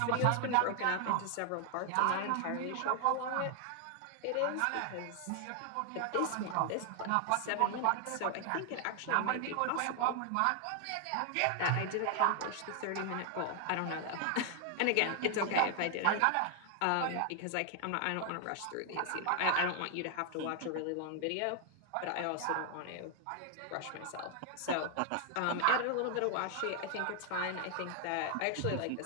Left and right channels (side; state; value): both; different; correlation 0.00